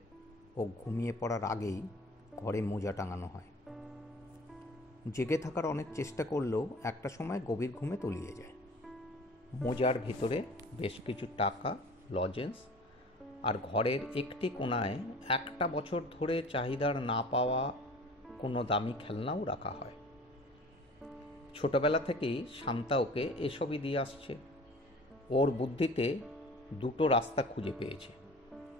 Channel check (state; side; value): normal; both; correlation 0.44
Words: ও ঘুমিয়ে পড়ার আগেই ঘরে মোজা টাঙানো হয়। জেগে থাকার অনেক চেষ্টা করলেও একটা সময় গভীর ঘুমে তলিয়ে যায়। মোজার ভিতরে বেশ কিছু টাকা, লজেন্স আর ঘরের একটি কোণায় একটা বছর ধরে চাহিদার না পাওয়া কোনো দামি খেলনাও রাখা হয়। ছোটবেলা থেকেই শান্তা ওকে এসবই দিয়ে আসছে। ওর বুদ্ধিতে দুটো রাস্তা খুঁজে পেয়েছে।